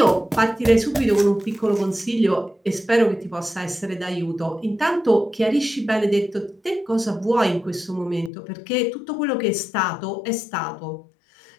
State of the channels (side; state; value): right; drops out; at 8.3 s